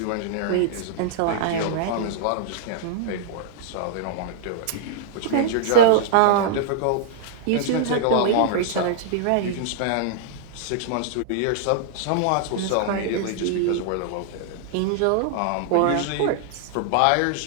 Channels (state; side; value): different; both; correlation -0.02